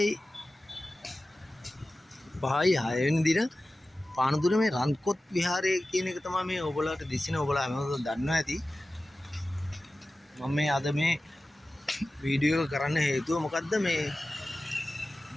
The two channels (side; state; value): both; normal; correlation 0.95